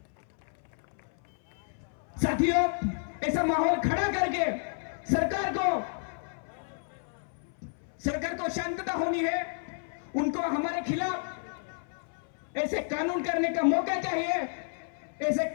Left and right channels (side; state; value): right; silent; 57 dB below the other